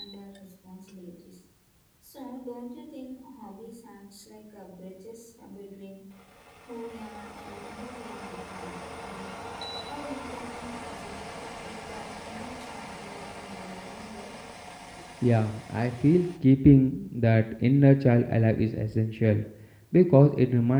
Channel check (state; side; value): identical; both; correlation 1.00